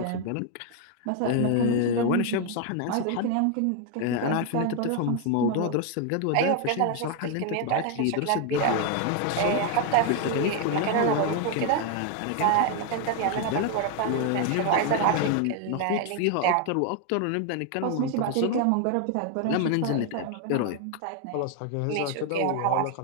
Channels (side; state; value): both; different; correlation 0.01